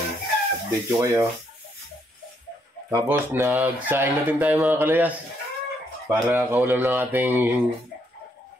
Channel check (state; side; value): normal; both; correlation 0.73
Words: Update ko kayo. Tapos nagsaing natin tayo mga kalayas para kaulam ng ating